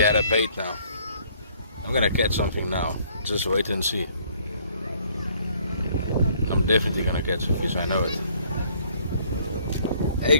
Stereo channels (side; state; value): both; inverted; correlation -0.61